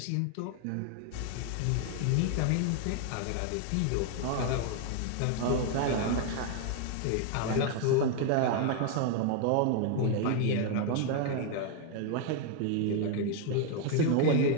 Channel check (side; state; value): both; different; correlation 0.01